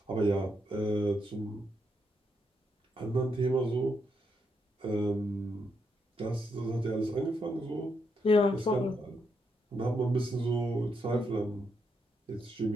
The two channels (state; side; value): normal; both; correlation 0.79